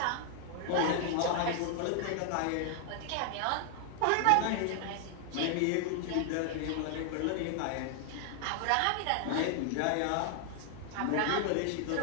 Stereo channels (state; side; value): different; both; correlation 0.00